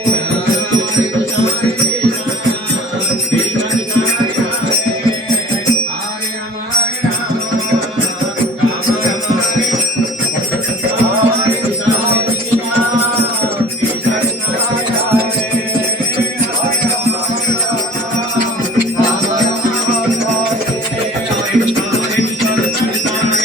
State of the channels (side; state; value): both; normal; correlation 0.46